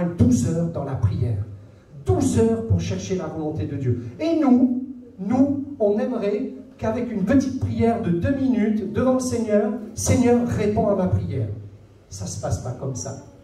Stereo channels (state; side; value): identical; both; correlation 1.00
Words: 12 heures dans la prière. 12 heures pour chercher la volonté de Dieu. Et nous, on aimerait qu'avec une petite prière de 2 minutes devant le Seigneur, Seigneur réponds à ma prière. Ça ne se passe pas comme ça.